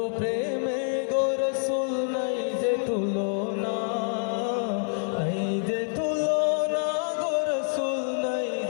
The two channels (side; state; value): right; silent; 58 dB below the other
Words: প্রেমে গো রাসূল নাই যে তুলনা, নাই যে তুলনা গো রাসূল, নাই